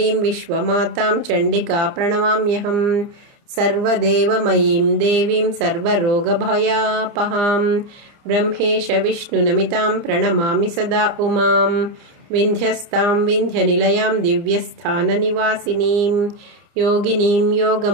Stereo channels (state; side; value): late; left; 29 ms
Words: विश्वमातां चण्डिका प्रणमाम्यहम्। सर्वदेवमयीं देवीं सर्वरोगभयापहां ब्रह्मेश विष्णुनमितां प्रणमामि सदा उमां। विन्ध्यस्तां विन्ध्यनिलयां दिव्यस्थाननिवासिनीं योगिनीं